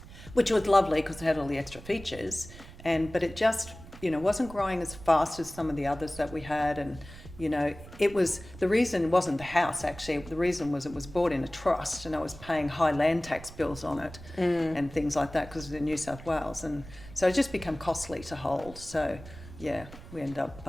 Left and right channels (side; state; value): right; noise; rumble, 16 dB below the sound